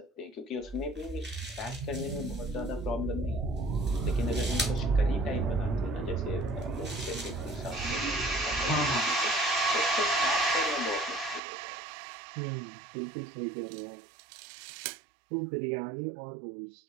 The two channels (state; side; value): drops out; left; at 11.4 s